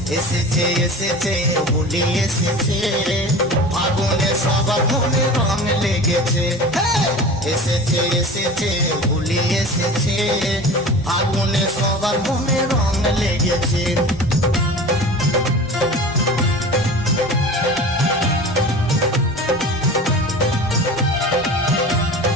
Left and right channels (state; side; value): normal; both; correlation 0.36